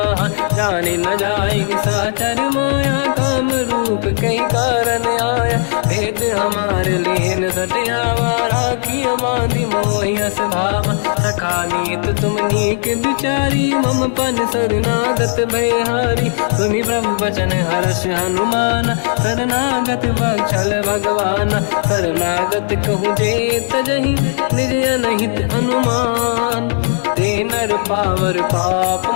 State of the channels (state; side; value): silent; right; digital silence